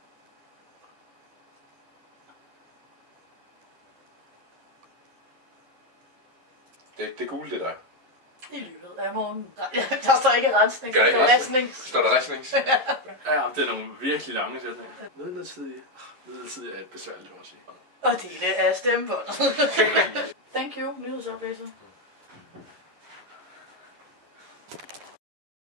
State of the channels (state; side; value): late; left; 11 ms